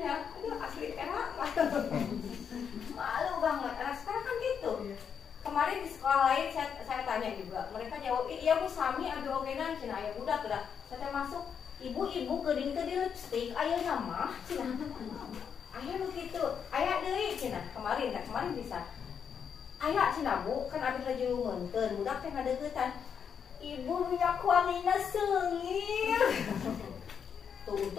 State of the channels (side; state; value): right; quieter; 7.3 dB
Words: aduh asli enak. Malu banget, anak sekarang kan gitu. Kemarin di sekolah lain saya tanya juga, mereka jawab, iya Bu sami ada ogenan cina aya budak dah. Saya masuk, ibu keding ke di lipstick, aya nama cina. Aya begitu, aya deui cina. Kemarin bisa. Aya cina Bu, kan abis lagi menteun, budak teh ngadeuketan. Ibu minyak wanginya seungit. Tuh